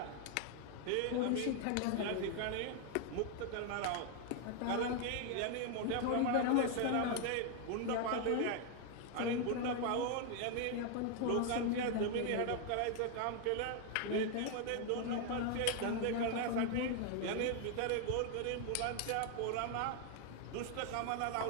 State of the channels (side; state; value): both; different; correlation 0.01